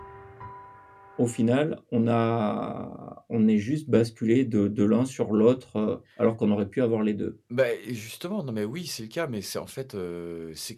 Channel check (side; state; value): both; identical; correlation 1.00